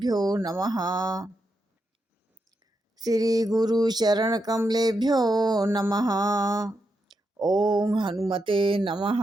नमः। श्री गुरु चरण कमलेभ्यो नमः। ओम हनुमते नमः।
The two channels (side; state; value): both; normal; correlation 0.84